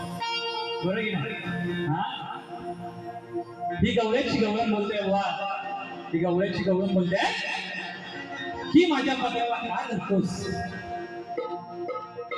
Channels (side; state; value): both; identical; correlation 1.00